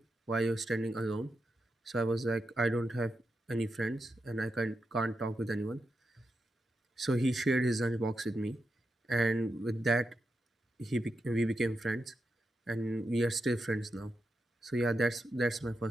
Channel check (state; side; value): normal; both; correlation 0.87